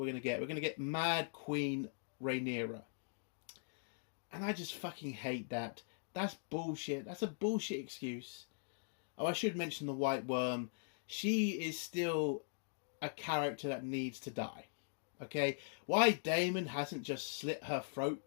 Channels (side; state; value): right; silent; digital silence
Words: going to get. We're going to get Mad Queen Rhaenyra. And I just fucking hate that. That's bullshit. That's a bullshit excuse. Oh, I should mention the White Worm. She is still a character that needs to die. Okay? Why Daemon hasn't just slit her